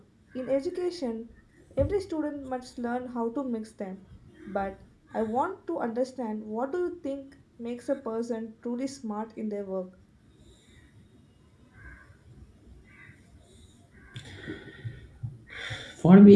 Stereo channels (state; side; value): identical; both; correlation 1.00